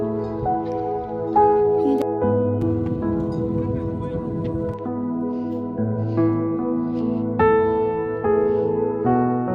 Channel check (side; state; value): both; identical; correlation 1.00